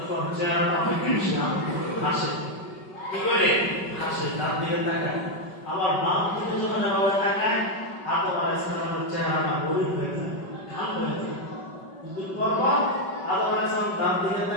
চেহারাটা অনেক ইসলাম হাসে, কি করে হাসে, ডান দিকে তাকায়। আবার বাম দিকে যখন এভাবে তাকায় আদম আলাইহিস সালামের চেহারাটা মলিন হয়ে যায়, কাল হয়ে যায়। কিন্তু পরপর আদম আলাইহিস সালাম ডান দিকে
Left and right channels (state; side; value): late; right; 5.3 ms